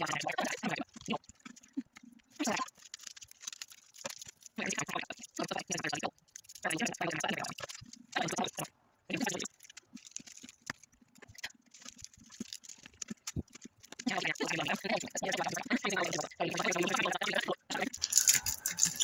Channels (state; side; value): identical; both; correlation 1.00